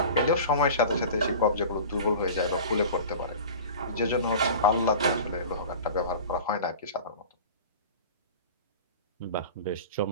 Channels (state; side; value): inverted; both; correlation -0.37